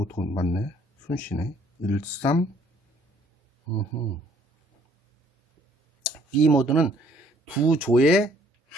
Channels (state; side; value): normal; both; correlation 0.62